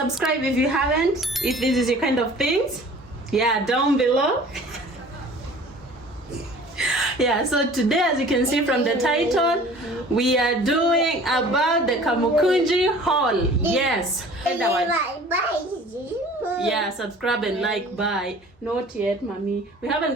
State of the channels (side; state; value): both; normal; correlation 0.47